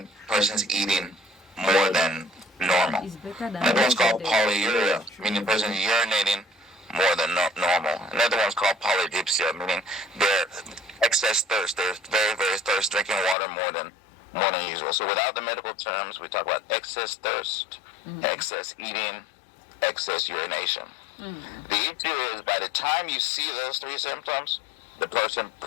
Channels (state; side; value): drops out; right; at 13.4 s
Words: person's eating more than normal. Another one's called polyuria, meaning person's urinating more than normal. Another one's called polydipsia, meaning they're excess thirst. They're very, very thirsty, drinking water more than usual. So without the medical terms, we talk about excess thirst, excess eating, excess urination. The issue is by the time you see those three symptoms, the person